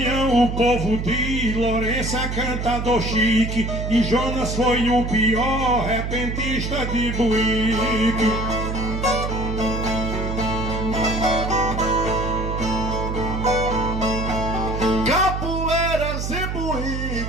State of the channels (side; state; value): right; noise; hum, 3 dB below the sound